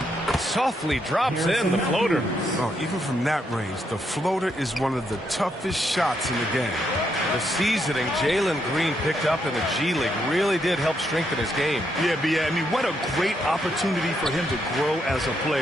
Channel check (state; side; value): normal; both; correlation 0.78